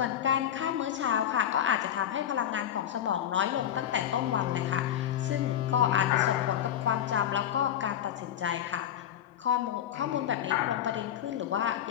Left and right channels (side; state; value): right; quieter; 10.5 dB